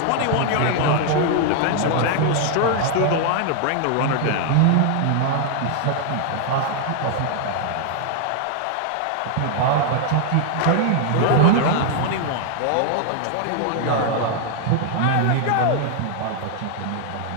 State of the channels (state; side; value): different; both; correlation 0.00